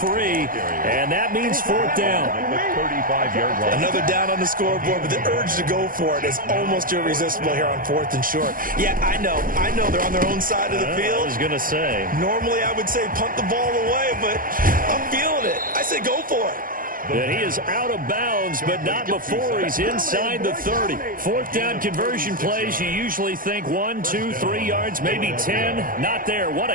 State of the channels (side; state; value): left; late; 0.41 ms